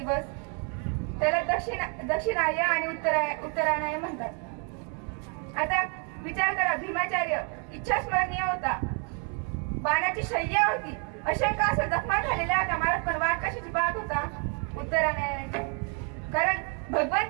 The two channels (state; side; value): quieter; left; 38.2 dB